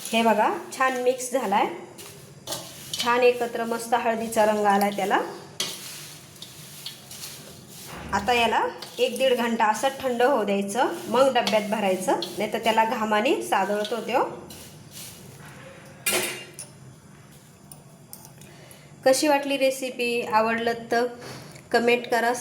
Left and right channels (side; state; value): both; identical; correlation 1.00